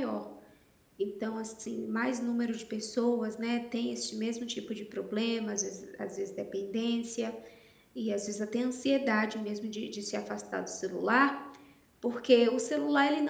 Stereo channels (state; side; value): identical; both; correlation 1.00